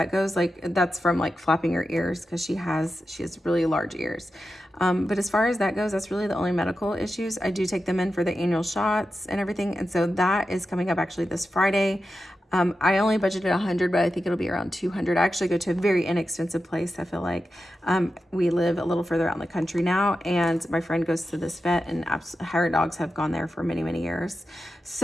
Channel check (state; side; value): normal; both; correlation 0.90